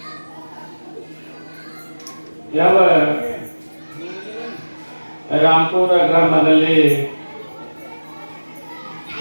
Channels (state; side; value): inverted; both; correlation -1.00